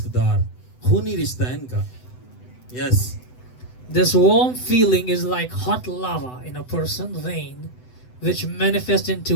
دار, خونی رشتہ ہے ان کا. یس. This warm feeling is like hot lava in a person's vein, which manifests in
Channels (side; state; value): right; late; 7.9 ms